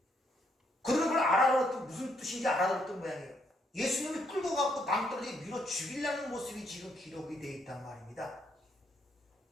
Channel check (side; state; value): both; normal; correlation 0.73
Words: 그들은 그걸 알아들었던, 무슨 뜻인지 알아들었던 모양이에요. 예수님을 끌고 가고 낭떠러지에 밀어 죽이려는 모습이 지금 기록이 되어 있단 말입니다.